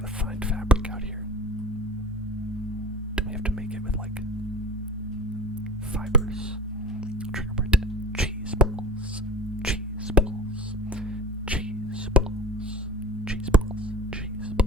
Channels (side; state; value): both; normal; correlation 0.38